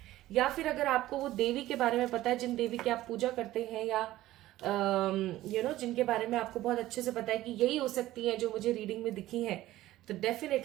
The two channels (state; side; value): quieter; left; 15.5 dB